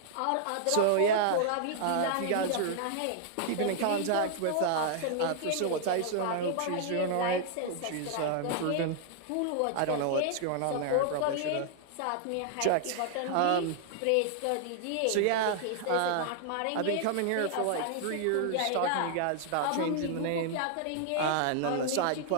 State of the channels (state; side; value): different; both; correlation -0.01